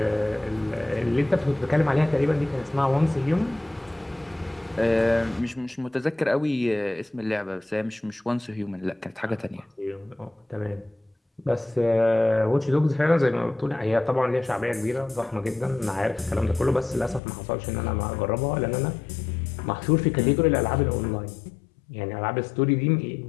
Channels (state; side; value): drops out; right; at 17.2 s